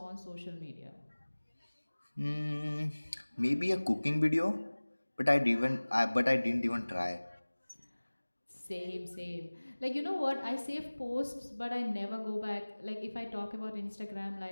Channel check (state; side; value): inverted; both; correlation -1.00